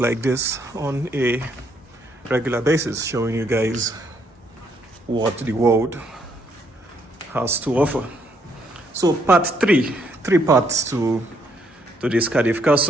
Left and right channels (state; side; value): normal; both; correlation 0.72